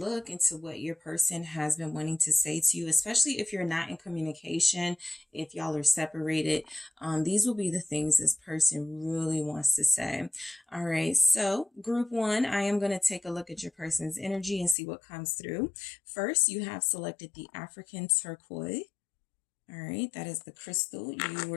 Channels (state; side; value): drops out; right; at 14.8 s